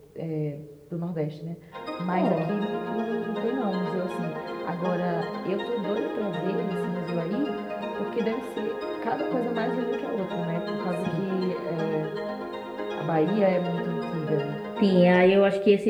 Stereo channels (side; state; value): both; identical; correlation 1.00